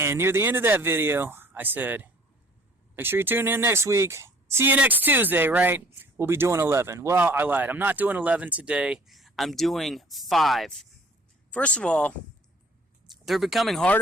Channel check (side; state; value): both; normal; correlation 0.53